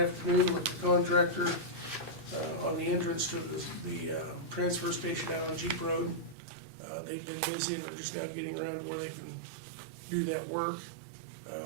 with the contractor on the entrance to the transfer station out on Jeep Road. They've been busy, and they're just now getting around to where they can do that work.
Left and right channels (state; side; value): drops out; left; at 6.4 s